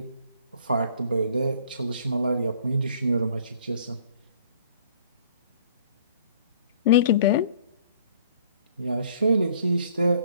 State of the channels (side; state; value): both; inverted; correlation -0.56